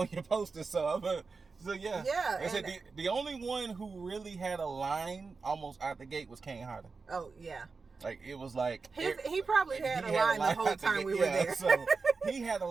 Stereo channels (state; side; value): quieter; left; 4.5 dB